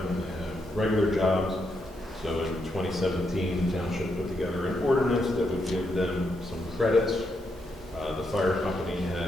they have regular jobs. So in 2017, the township put together an ordinance that would give them some credits. The fire company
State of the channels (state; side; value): normal; both; correlation 0.80